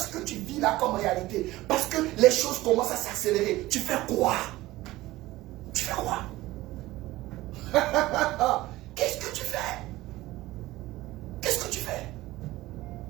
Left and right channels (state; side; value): quieter; left; 17.8 dB